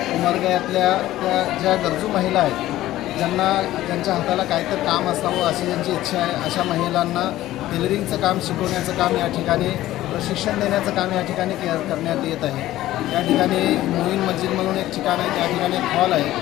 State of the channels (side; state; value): right; quieter; 15.0 dB